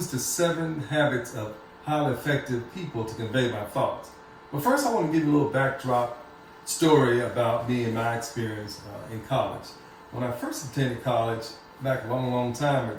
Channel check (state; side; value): identical; both; correlation 1.00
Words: the 7 habits of highly effective people to convey my thoughts. But first, I want to give you a little backdrop story about me and my experience in college. When I first attended college back a long, long time